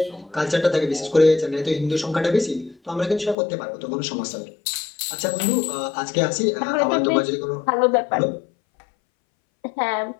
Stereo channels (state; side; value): drops out; right; at 3.4 s